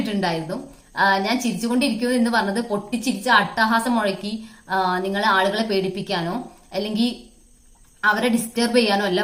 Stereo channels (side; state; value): both; identical; correlation 1.00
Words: ഇട്ടിട്ടുണ്ടായിരുന്നു. ഞാൻ ചിരിച്ചുകൊണ്ടിരിക്കുന്നു എന്ന് പറഞ്ഞത് പൊട്ടിച്ചിരിച്ച അട്ടഹാസം മുഴക്കി നിങ്ങളെ ആളുകളെ പേടിപ്പിക്കാനോ അല്ലെങ്കിൽ അവരെ ഡിസ്റ്റർബ് ചെയ്യാനോ അല്ല